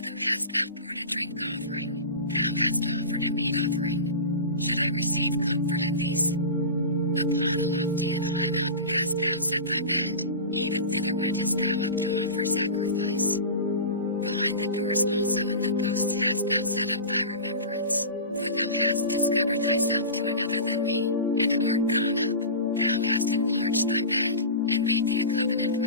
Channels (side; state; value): both; inverted; correlation -0.30